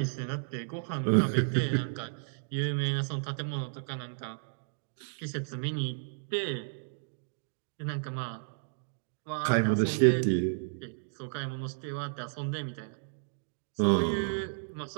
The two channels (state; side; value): silent; left; digital silence